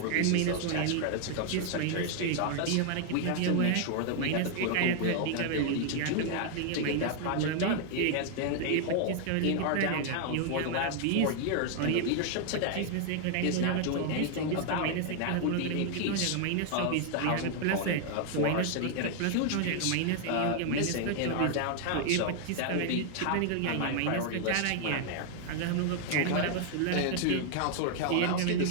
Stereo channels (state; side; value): different; both; correlation 0.00